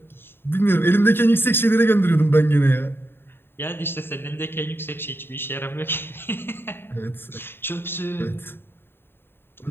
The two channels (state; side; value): late; right; 0.11 ms